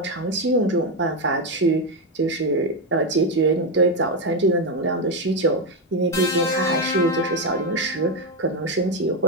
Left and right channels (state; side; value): normal; both; correlation 0.06